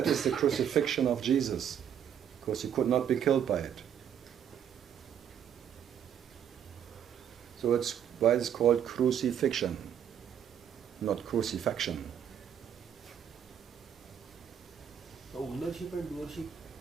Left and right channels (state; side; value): quieter; left; 9.1 dB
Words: is the crucifixion of Jesus, because he could not be killed by it. So it's why it's called crucifixion, not crucifixion. Ownership and doership,